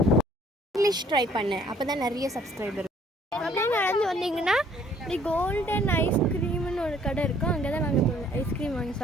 இங்கிலீஷ் ட்ரை பண்ணேன், அப்போ தான் நிறைய சப்ஸ்கிரைபர். அப்படியே நடந்து வந்தீங்கன்னா இப்படி கோல்டன் ஐஸ்கிரீம்னு ஒரு கடை இருக்கும். அங்கே தான் நாங்கள் ஐஸ்கிரீம் வாங்கி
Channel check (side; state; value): both; normal; correlation 0.60